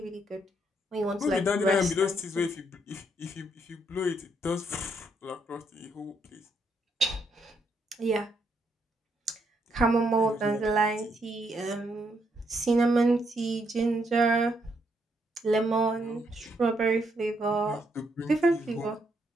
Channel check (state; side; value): normal; both; correlation 0.75